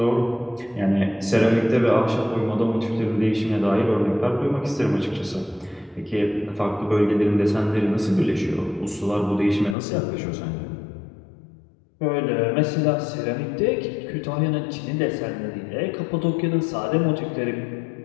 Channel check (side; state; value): right; drops out; at 9.8 s